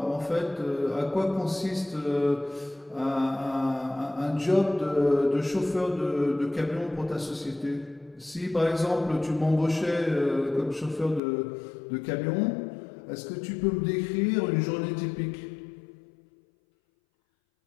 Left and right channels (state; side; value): drops out; right; at 11.2 s